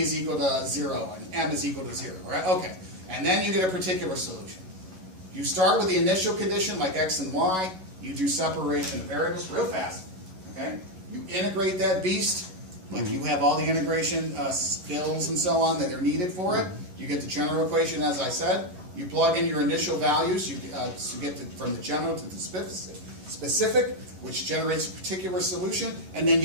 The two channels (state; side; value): late; left; 11 ms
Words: equal to 0 and m is equal to 0, right? Okay. And then you get a particular solution. You start with the initial condition like x and y. You do separation of variables real fast. Okay? You integrate that beast. Like you have all the integration skills and so on that are needed for it. You get the general equation, as I said. You plug in your initial values. You get from the general to the specific, which generates a particular solution, and then